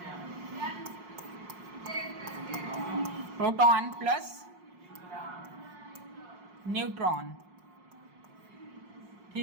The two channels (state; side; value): late; left; 5.6 ms